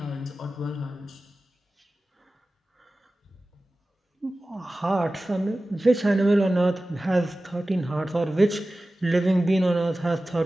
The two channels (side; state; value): both; normal; correlation 0.96